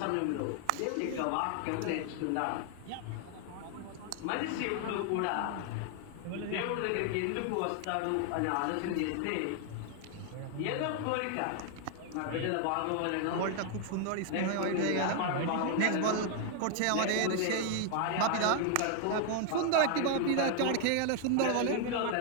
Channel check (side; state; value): both; different; correlation 0.00